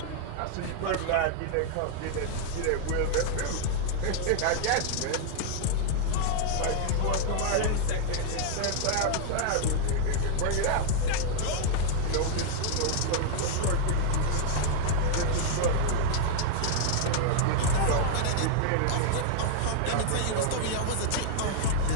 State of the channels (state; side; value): different; both; correlation -0.01